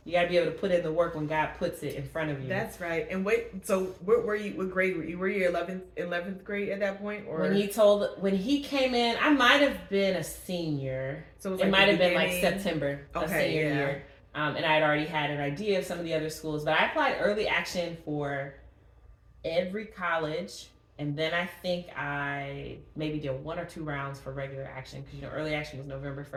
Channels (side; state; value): both; identical; correlation 1.00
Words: got to be able to put in the work when God puts it in front of you. That's right. And so what grade were you? Were you 11th grade at that point? Or when he came in, I might have been a senior. So it might have been like September of senior year. And I had already had an idea of some of the other schools, but I applied early action for every college. And then I think I maybe did 1 or 2 rounds for regular action, because early action was November